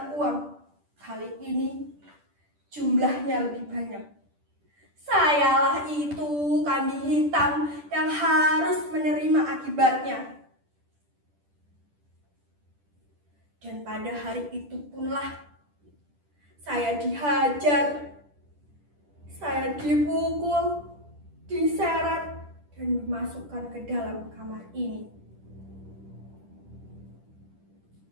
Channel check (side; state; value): left; late; 10 ms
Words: uang. Kali ini jumlahnya lebih banyak. Sayalah itu kambing hitam yang harus menerima akibatnya. Dan pada hari itu punlah saya dihajar, saya dipukul, diseret, dan dimasukkan ke dalam kamar ini.